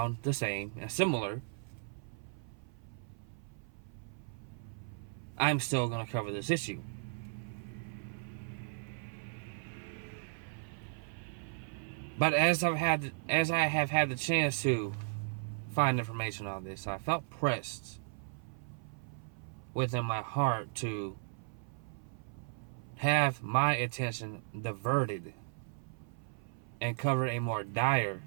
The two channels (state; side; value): silent; left; 54 dB below the other